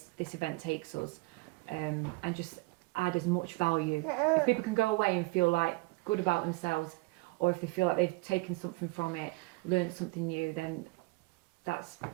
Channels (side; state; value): left; quieter; 24.4 dB